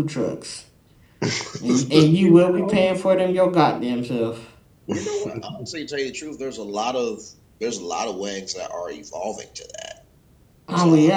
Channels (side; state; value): both; identical; correlation 1.00